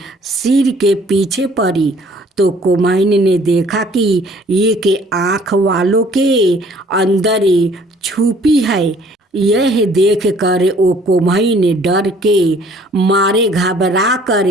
सिर के पीछे पड़ी तो कुम्हाइन ने देखा कि एक आँख वालों के अंदर छुपी है। यह देख कर वो कुम्हाइन डर के मारे घबरा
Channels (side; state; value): both; normal; correlation 0.57